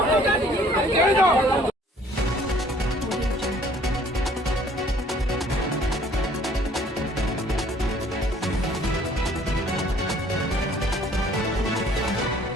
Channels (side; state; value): both; normal; correlation 0.58